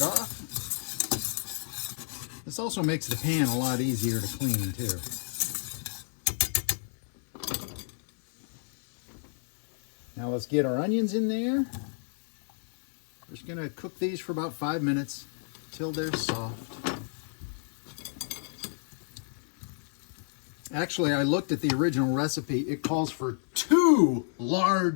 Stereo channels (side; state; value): right; silent; 58 dB below the other